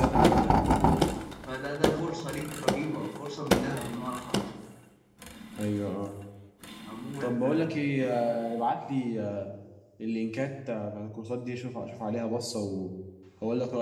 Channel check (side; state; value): both; identical; correlation 1.00